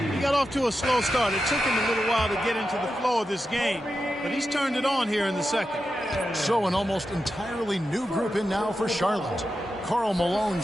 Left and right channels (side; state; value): both; normal; correlation 0.89